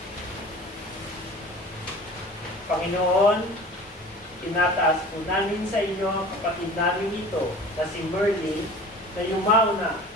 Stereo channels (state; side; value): normal; both; correlation 0.41